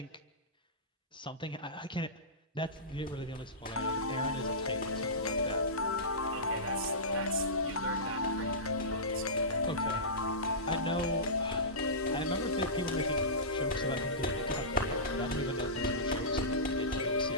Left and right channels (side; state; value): both; normal; correlation -0.19